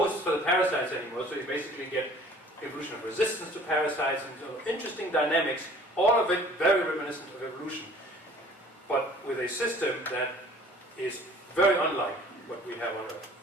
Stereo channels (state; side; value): normal; both; correlation 0.51